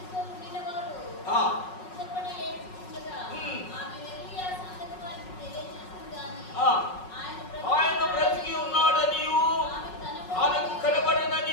ఆయన బ్రతికి ఉన్నాడనియు ఆమెకు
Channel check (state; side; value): late; right; 5.4 ms